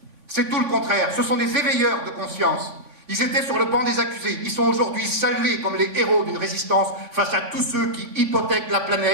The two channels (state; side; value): late; left; 3.6 ms